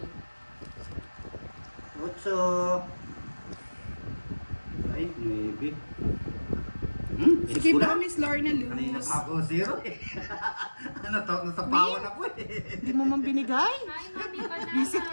Butso! Ay, maybe. Sige ba, Miss Lorna Kanina Luz? pa ako zero eh. Ano to? Nasapawan ako eh. Hindi mo man binigay? Hi, Mami Banana. Visit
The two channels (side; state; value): both; inverted; correlation -1.00